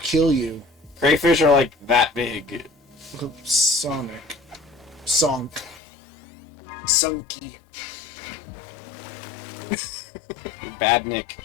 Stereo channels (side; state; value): right; drops out; at 5.8 s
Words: you. Crayfish are like that big. Look up Sonic. Sonk. Sunky. Badnik.